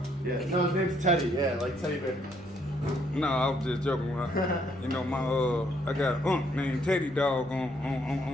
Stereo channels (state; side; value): normal; both; correlation 0.69